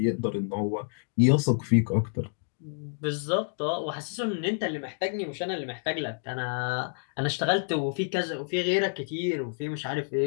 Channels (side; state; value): right; silent; digital silence